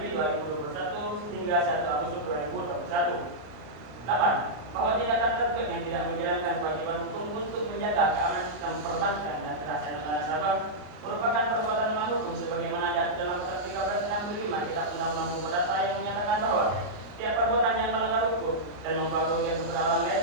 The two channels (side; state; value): left; late; 33 ms